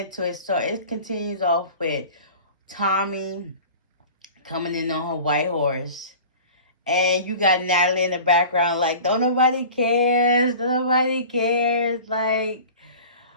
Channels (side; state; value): both; inverted; correlation -0.40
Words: into it. So it continues off with Tommie coming in on her white horse. And you got Natalie in the background like, don't nobody cares, don't nobody cares. Like,